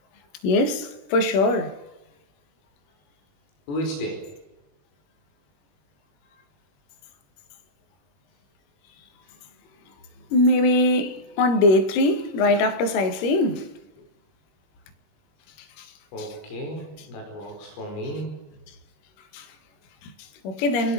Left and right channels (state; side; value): late; right; 21 ms